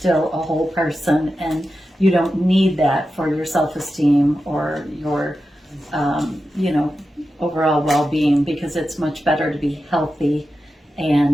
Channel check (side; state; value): both; normal; correlation 0.91